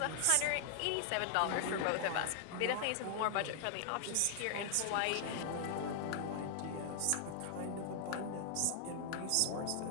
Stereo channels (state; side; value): different; both; correlation 0.00